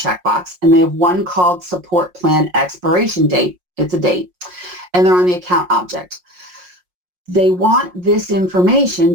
And they have one called Support Plan Expiration Date. It's a date. And they're on the account object. They want this information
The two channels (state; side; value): late; left; 5.6 ms